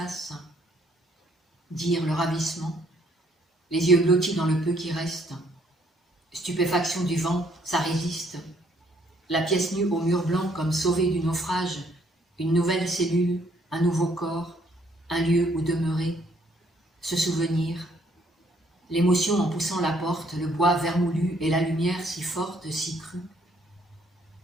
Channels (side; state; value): both; normal; correlation 0.67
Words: dire le ravissement, les yeux blottis dans le peu qui reste, stupéfaction du vent, ça résiste, la pièce nue au mur blanc comme sauvée du naufrage, une nouvelle cellule, un nouveau corps, un lieu où demeurer, se souvenir, l'émotion en poussant la porte, le bois vermoulu et la lumière si forte, si crue.